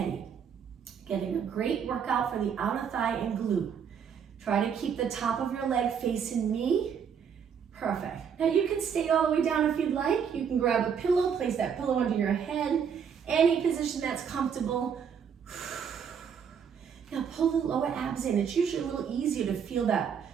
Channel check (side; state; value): left; quieter; 7.3 dB